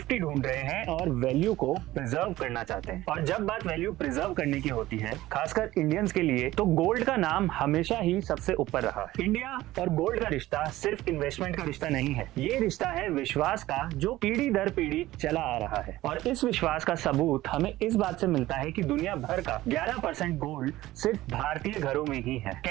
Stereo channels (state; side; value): quieter; left; 16.4 dB